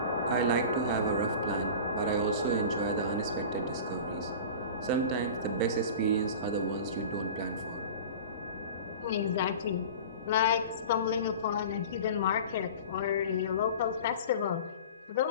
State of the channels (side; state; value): both; inverted; correlation -0.36